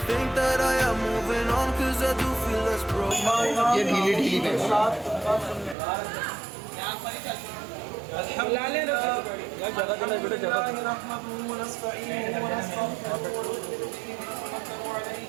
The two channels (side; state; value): left; drops out; at 5.8 s